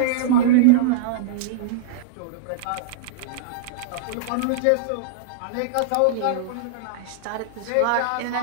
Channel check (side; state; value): both; different; correlation -0.02